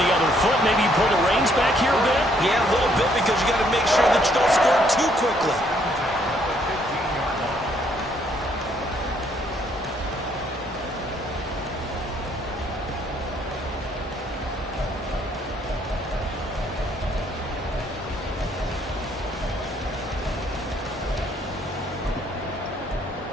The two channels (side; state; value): both; normal; correlation 0.68